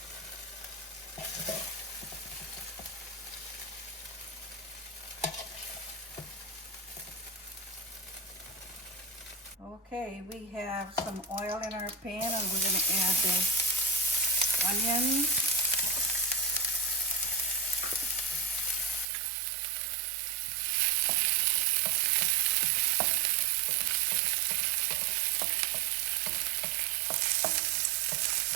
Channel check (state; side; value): drops out; left; at 19.1 s